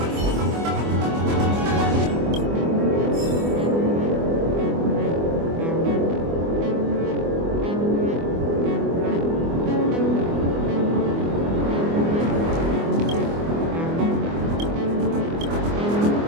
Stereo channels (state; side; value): late; left; 24 ms